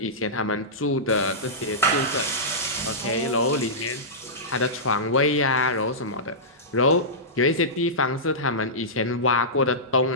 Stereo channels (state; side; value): normal; both; correlation -0.15